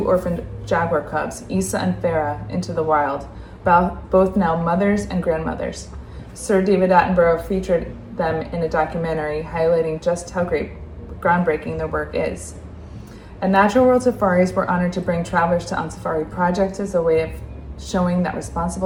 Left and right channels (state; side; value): identical; both; correlation 1.00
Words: orphaned jaguar cubs, Isa and Farah, into the wild, both now mothers and grandmothers. Sir David Attenborough featured them in a documentary highlighting just how groundbreaking their work is. At Natural World Safaris, we're honored to bring travelers to Onçafari projects as a way of showing that